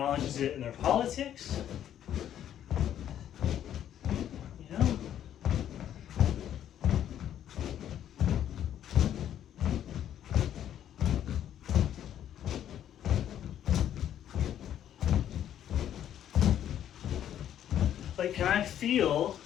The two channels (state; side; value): quieter; right; 10.6 dB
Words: it in their politics. You know? Like, can I feel